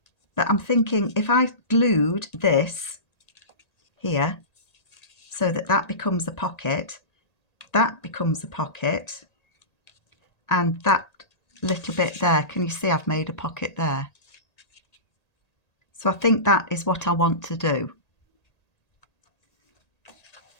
But I'm thinking if I glued this here so that that becomes a pocket, that becomes a pocket, and that little bit there, can you see I've made a pocket there? So I think that is what I want to do.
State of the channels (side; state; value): right; late; 1.8 ms